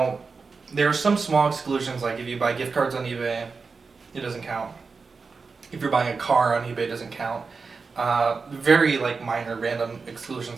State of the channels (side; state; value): left; quieter; 4.7 dB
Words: there are some small exclusions, like if you buy gift cards on eBay, it doesn't count. If you're buying a car on eBay, it doesn't count. Very like minor random